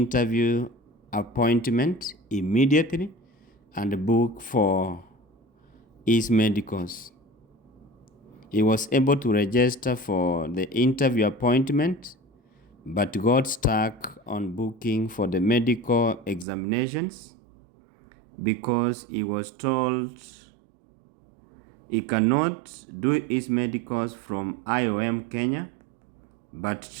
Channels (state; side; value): drops out; left; at 16.4 s